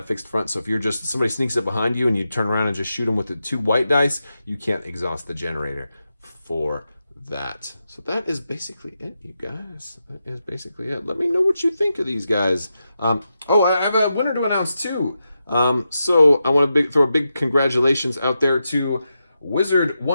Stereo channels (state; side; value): inverted; both; correlation -0.88